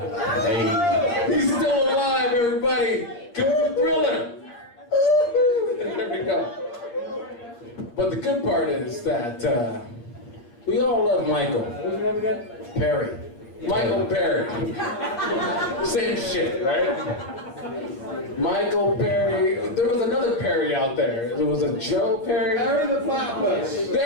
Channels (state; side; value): late; right; 8.5 ms